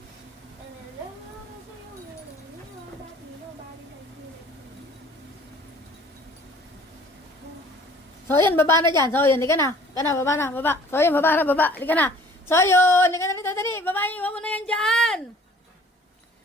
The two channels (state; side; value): normal; both; correlation 0.52